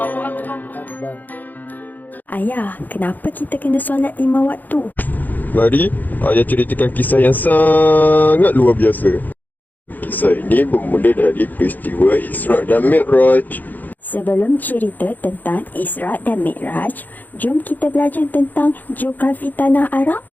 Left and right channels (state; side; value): late; right; 0.084 ms